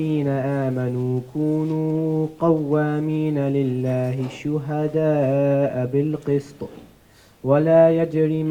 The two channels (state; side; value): identical; both; correlation 1.00